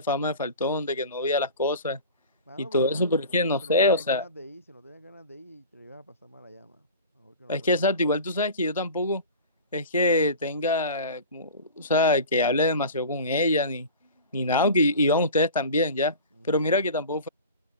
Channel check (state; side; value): inverted; both; correlation -0.37